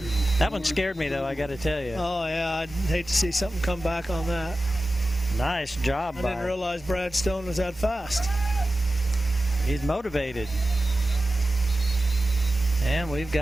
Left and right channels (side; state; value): both; normal; correlation 0.94